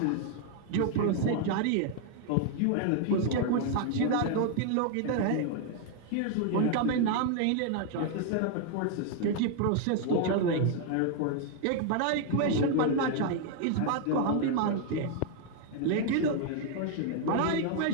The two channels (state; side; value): different; both; correlation 0.00